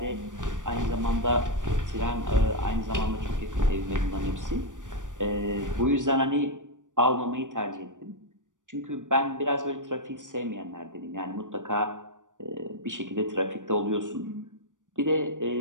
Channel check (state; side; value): late; left; 0.87 ms